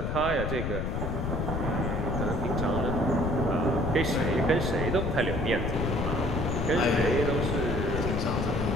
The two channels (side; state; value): left; noise; rumble, 1 dB below the sound